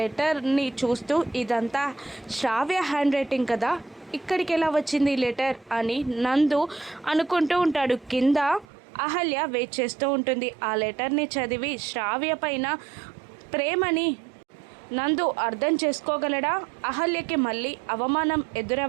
చూస్తూ, ఇదంతా శ్రావ్య హ్యాండ్ రైటింగ్ కదా, ఇక్కడికి ఎలా వచ్చింది ఈ లెటర్ అని నందు అనుకుంటూ ఉంటాడు. కింద అహల్య వెయిట్ చేస్తూ ఉంటుంది. ఆ లెటర్ని చదివి శ్రావ్య పైన ప్రేమని నందు అర్థం చేసుకోగలడా? అహల్యకి మళ్ళీ అవమానం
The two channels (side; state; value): left; drops out; at 8.7 s